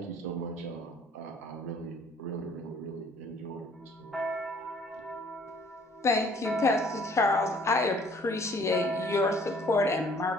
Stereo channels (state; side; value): normal; both; correlation 0.58